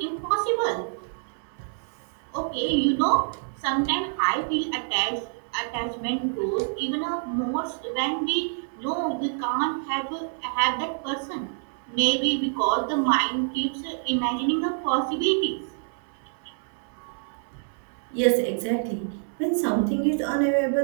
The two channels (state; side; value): silent; left; 60 dB below the other